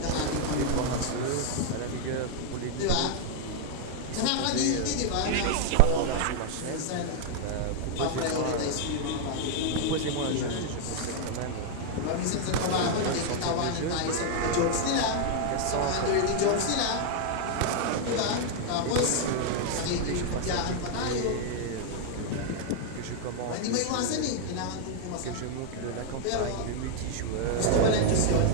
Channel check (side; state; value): both; different; correlation 0.00